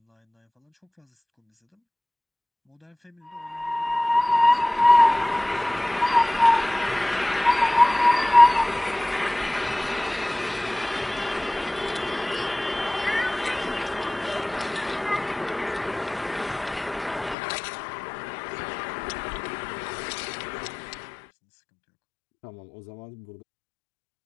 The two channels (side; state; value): right; drops out; at 17.4 s